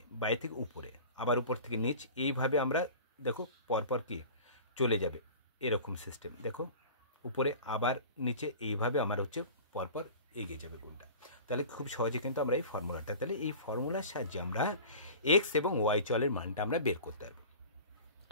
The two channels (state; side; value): inverted; both; correlation -0.38